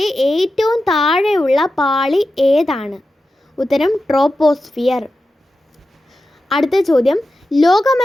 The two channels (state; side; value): normal; both; correlation 0.92